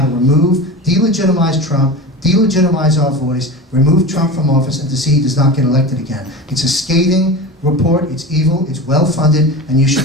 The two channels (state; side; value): normal; both; correlation 0.29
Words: to remove, delegitimize Trump, delegitimize our voice, remove Trump from office, and to see he does not get elected again. It's a scathing report, it's evil, it's well-funded, and you